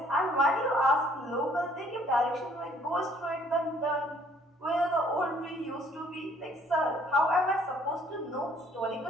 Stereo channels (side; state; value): both; normal; correlation 0.61